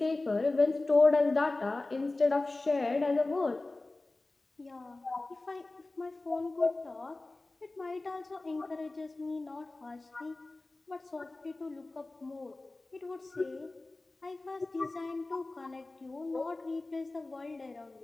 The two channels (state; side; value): quieter; right; 3.1 dB